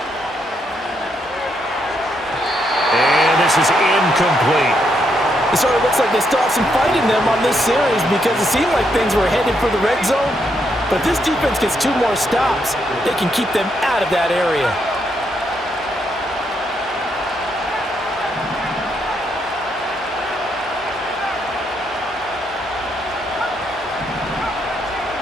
And this is incomplete. It sort of looks like they still have some fight in them on this series because it seemed like things were headed for the red zone. But if this defense gets 2 more stops, they can keep them out of that area.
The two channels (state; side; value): normal; both; correlation 0.77